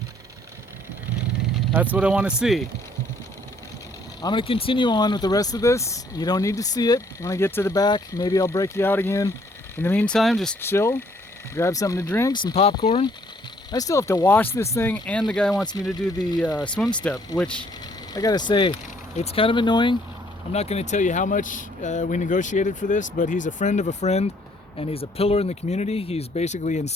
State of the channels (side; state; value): both; normal; correlation 0.64